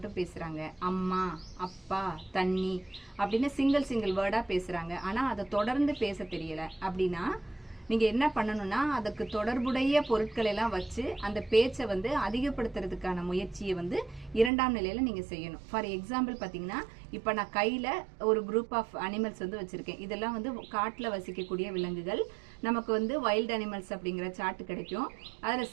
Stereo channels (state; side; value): drops out; left; at 14.5 s